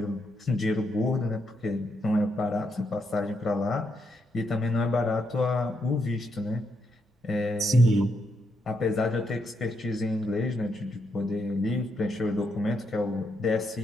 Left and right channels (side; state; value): both; normal; correlation 0.79